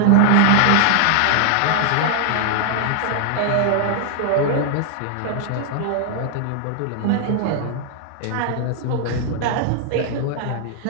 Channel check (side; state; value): both; different; correlation -0.01